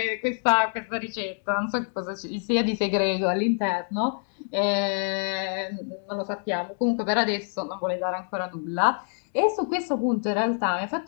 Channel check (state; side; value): silent; right; 61 dB below the other